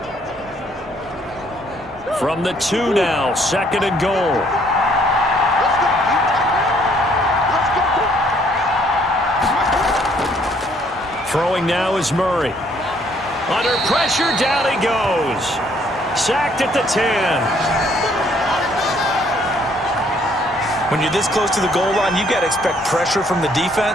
From the 2 now, 2nd and goal. Throwing now is Murray. Under pressure, down he goes. Sacked at the 10. When you're this close to the goal line, you've got to expect pressure from the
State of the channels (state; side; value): normal; both; correlation 0.64